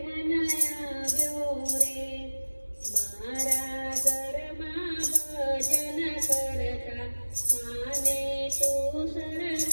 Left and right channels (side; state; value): both; inverted; correlation -1.00